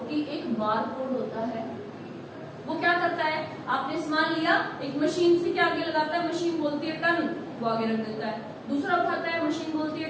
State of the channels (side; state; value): both; identical; correlation 1.00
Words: कि एक बार कोड होता है, वो क्या करता है, आपने सामान लिया, एक मशीन से क्या आगे लगाता है, मशीन बोलती है टन, वो आगे रख देता है, दूसरा उठाता है, मशीन बोलती है